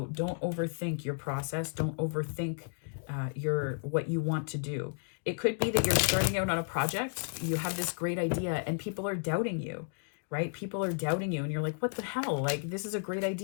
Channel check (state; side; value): silent; right; 56 dB below the other